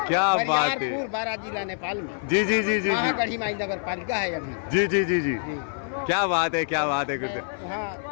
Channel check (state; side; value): silent; right; 57 dB below the other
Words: क्या बात है। बारा जिला नेपाल में। जी जी जी जी जी। गढ़ी माई नगर पालिका है अभी। जी जी जी जी। क्या बात है, क्या बात है गुरुदेव।